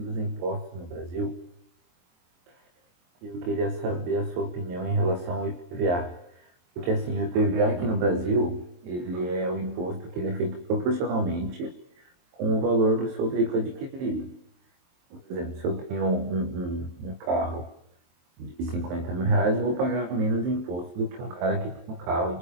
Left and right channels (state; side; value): late; left; 23 ms